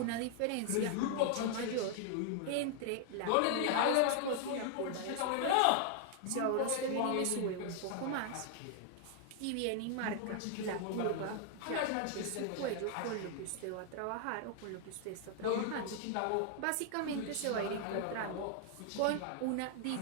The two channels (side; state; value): both; different; correlation 0.00